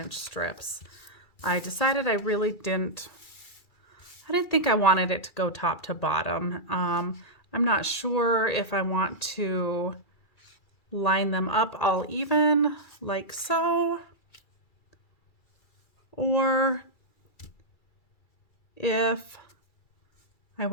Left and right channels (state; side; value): late; right; 2.3 ms